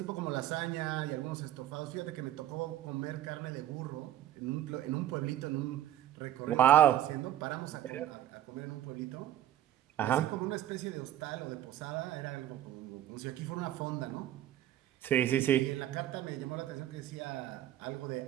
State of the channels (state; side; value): quieter; left; 12.4 dB